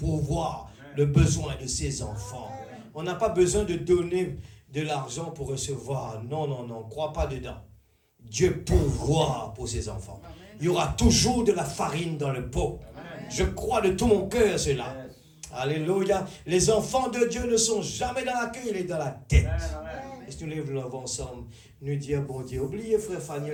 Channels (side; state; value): both; identical; correlation 1.00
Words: le besoin de ses enfants. On n'a pas besoin de donner de l'argent pour recevoir. Non, non, non, crois pas dedans. Dieu pourvoit pour ses enfants. Il y aura toujours de la farine dans le pot. Je crois de tout mon cœur cela. Alléluia. Les enfants de Dieu ne sont jamais dans la queue, il est dans la tête. Est-ce que nous lèvons ensemble, nous dire, bon Dieu, oubliez frère